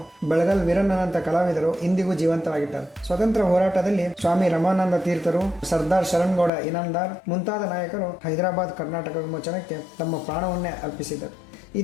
ಬೆಳಗಲ್ ವೀರಣ್ಣನಂತ ಕಲಾವಿದರು ಇಂದಿಗೂ ಜೀವಂತವಾಗಿದ್ದಾರೆ. ಸ್ವತಂತ್ರ ಹೋರಾಟದಲ್ಲಿ ಸ್ವಾಮಿ ರಮಾನಂದ ತೀರ್ಥರು, ಸರ್ದಾರ್ ಶರಣ್ಗೌಡ ಇನಾಮದಾರ್ ಮುಂತಾದ ನಾಯಕರು ಹೈದರಾಬಾದ್ ಕರ್ನಾಟಕ ವಿಮೋಚನಕ್ಕೆ ತಮ್ಮ ಪ್ರಾಣವನ್ನೇ ಅರ್ಪಿಸಿದರು.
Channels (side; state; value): right; drops out; at 6.5 s